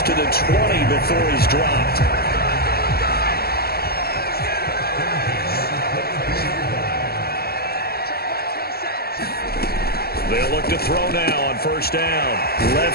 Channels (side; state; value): right; late; 0.45 ms